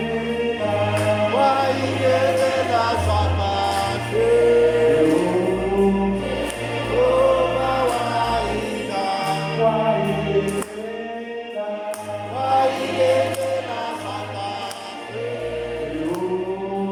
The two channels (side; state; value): both; identical; correlation 1.00